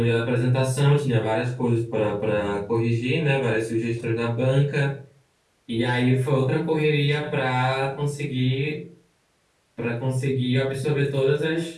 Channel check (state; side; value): identical; both; correlation 1.00